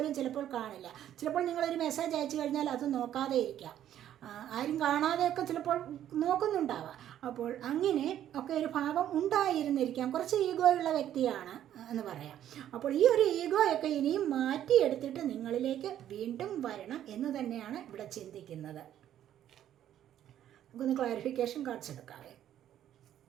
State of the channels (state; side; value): quieter; left; 11.2 dB